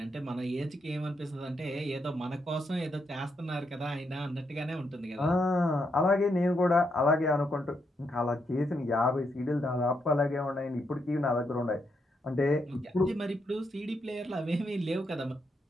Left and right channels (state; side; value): normal; both; correlation 0.80